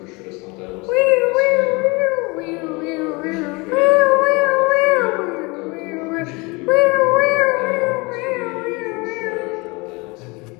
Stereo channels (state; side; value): quieter; right; 26.8 dB